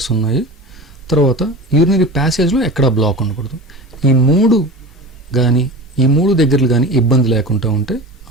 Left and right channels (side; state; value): both; normal; correlation 0.32